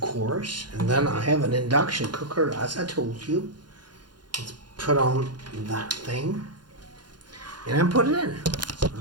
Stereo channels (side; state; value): left; late; 0.71 ms